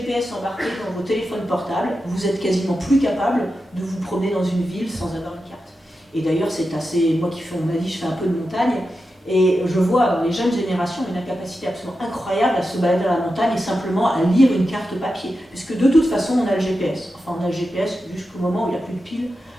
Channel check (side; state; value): both; normal; correlation 0.90